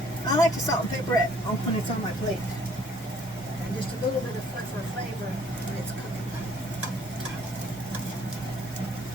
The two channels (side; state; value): both; normal; correlation 0.59